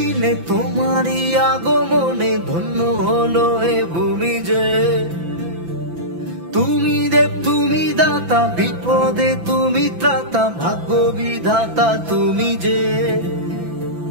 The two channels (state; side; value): late; left; 5.9 ms